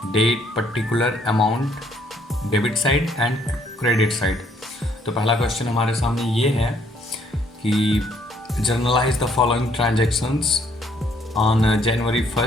date, particular, amount, debit side and credit side. तो पहला क्वेश्चन हमारे सामने ये है कि journalize the following transactions on January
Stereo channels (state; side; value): normal; both; correlation 0.66